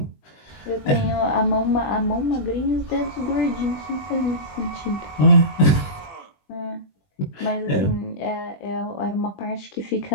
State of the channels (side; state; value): right; late; 20 ms